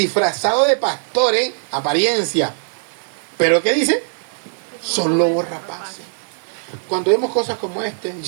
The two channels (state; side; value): silent; left; digital silence